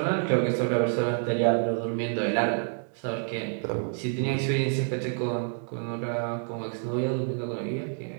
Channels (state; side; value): silent; left; 58 dB below the other